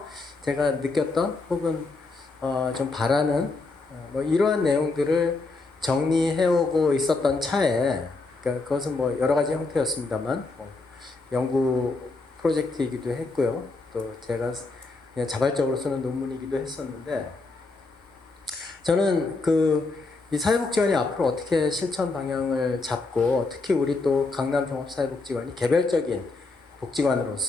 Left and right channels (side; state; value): right; quieter; 3.6 dB